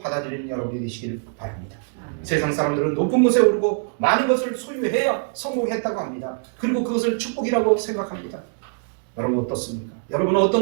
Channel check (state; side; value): silent; left; 62 dB below the other